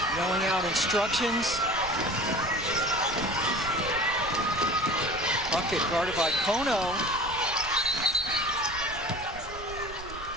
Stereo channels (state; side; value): noise; right; rumble, 15 dB below the sound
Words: yelling out instructions. Bucket guarded by Kono.